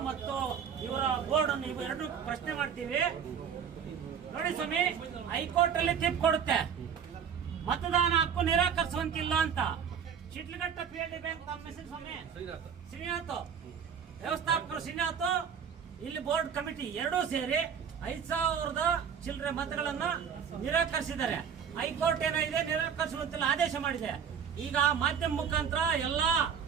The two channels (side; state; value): left; quieter; 7.5 dB